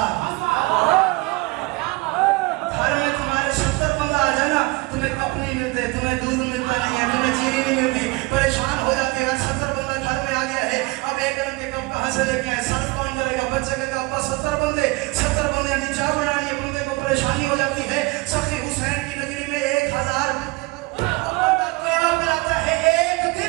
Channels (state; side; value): quieter; left; 24.3 dB